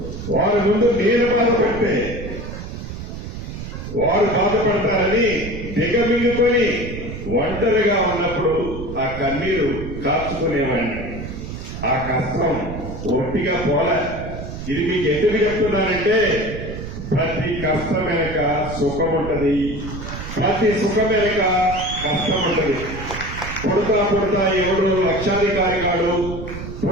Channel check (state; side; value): noise; right; rumble, 9 dB below the sound